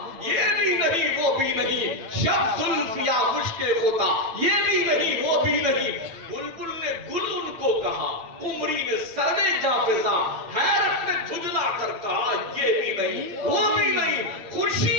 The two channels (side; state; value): left; late; 8.8 ms